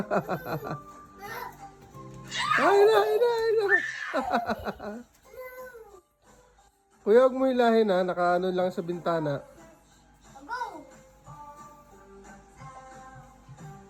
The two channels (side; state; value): both; identical; correlation 1.00